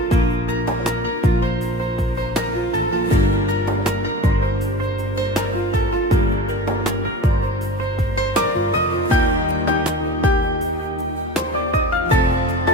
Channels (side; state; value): both; normal; correlation 0.33